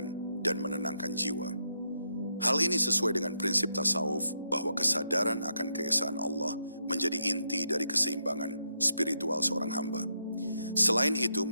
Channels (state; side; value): inverted; both; correlation -0.81